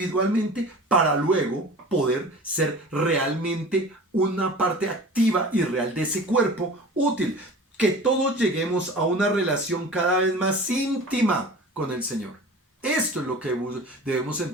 para luego poder ser realmente una parte activa y real de ese cuerpo útil. Que todos lleguemos a una relación cada vez más íntima con el Señor. Esto es lo que debemos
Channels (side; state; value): both; normal; correlation 0.39